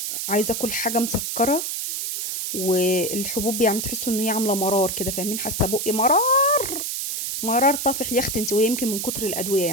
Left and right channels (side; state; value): right; noise; hiss, 3 dB below the sound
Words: عايزة آكل حاجة مسكّرة، والحبوب يعني تحسّوا إن هي عاملة مرار كده، فاهمين؟ حاسة بُقّي مرار، مرار طافح يا أختي أنتِ، وهي يمكن من كتر الأدوية